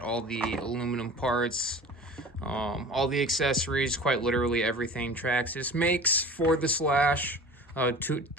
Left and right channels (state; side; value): normal; both; correlation 0.40